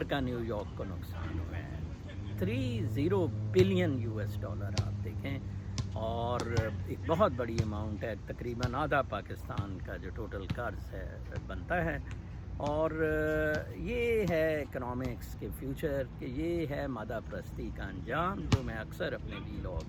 کا نیو یارک کو نقصان ہوا ہے. 30 بلین US آپ دیکھیں، اور ایک بہت بڑی اماؤنٹ ہے، تقریباً آدھا پاکستان کا جو ٹوٹل قرض ہے بنتا ہے. اور یہ ہے اکنامکس کے فیوچر، کہ یہ ہے مادہ پرستی کا انجام، جو میں اکثر اپنے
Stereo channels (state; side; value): identical; both; correlation 1.00